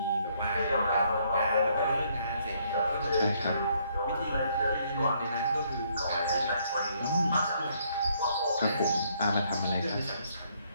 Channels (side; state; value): both; inverted; correlation -0.69